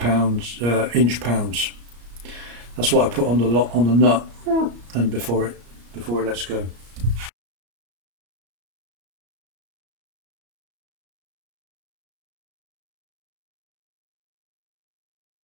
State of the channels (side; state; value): left; late; 34 ms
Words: inch-pounds. That's what I put on the nut, and before it lets go.